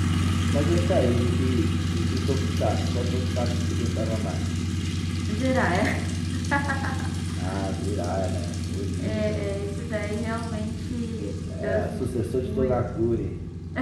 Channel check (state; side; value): identical; both; correlation 1.00